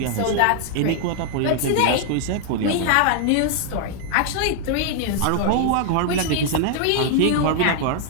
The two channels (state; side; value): different; both; correlation 0.00